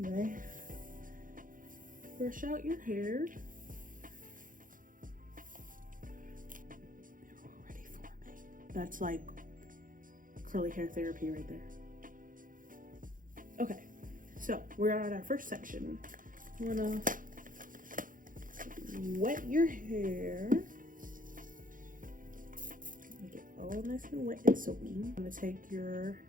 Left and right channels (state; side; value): late; left; 0.39 ms